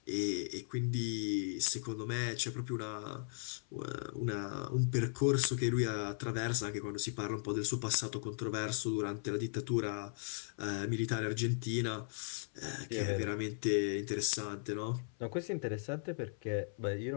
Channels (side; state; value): right; silent; 53 dB below the other